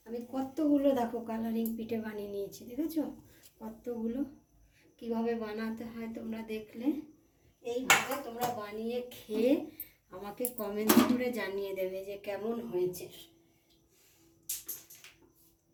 আমি কতগুলো দেখো কালারিং পিঠে বানিয়ে নিয়েছি, দেখেছো কতগুলো। কিভাবে বানাতে হয় তোমরা দেখলে, এইভাবে তোমরা বানিয়ে খেয়ে আমাকে কমেন্ট করে জানিয়ে দেবে যে কেমন হয়েছে।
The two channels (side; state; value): both; identical; correlation 1.00